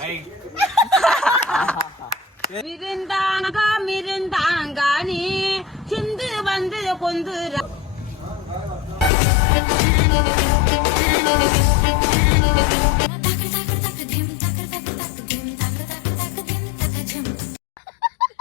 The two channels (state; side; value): drops out; right; at 9.1 s